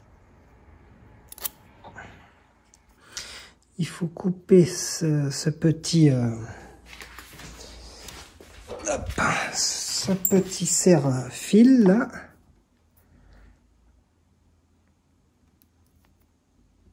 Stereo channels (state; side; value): identical; both; correlation 1.00